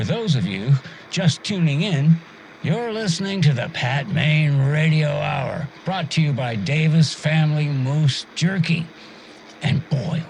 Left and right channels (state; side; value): identical; both; correlation 1.00